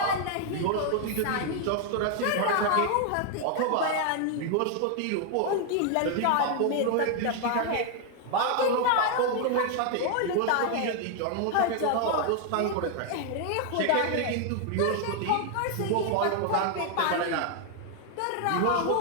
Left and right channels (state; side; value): different; both; correlation 0.00